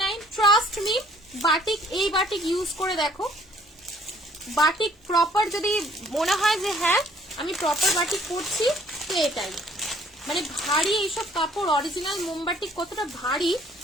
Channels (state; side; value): normal; both; correlation 0.59